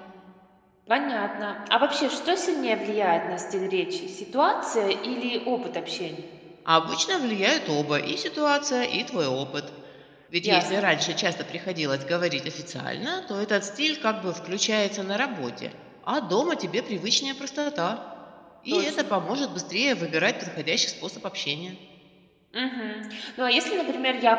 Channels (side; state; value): both; identical; correlation 1.00